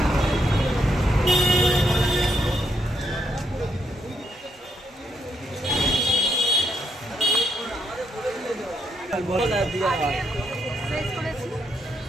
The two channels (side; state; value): both; normal; correlation 0.77